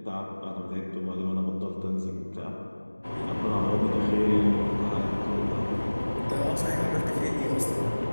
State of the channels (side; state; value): both; inverted; correlation -1.00